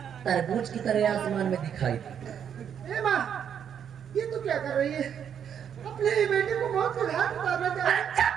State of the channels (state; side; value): quieter; left; 8.4 dB